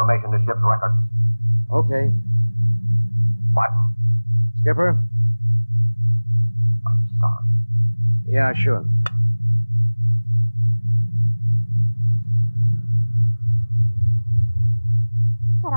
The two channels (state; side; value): inverted; both; correlation -1.00